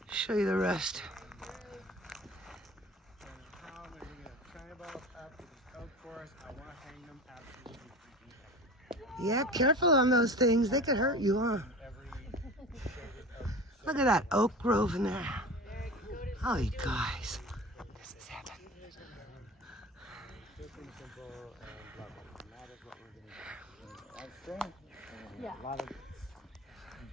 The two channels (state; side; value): normal; both; correlation 0.35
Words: show you the rest. Yeah, careful on those things. They could hurt you, huh? Look at that oak grove in there. Oh, you guys. This is heaven.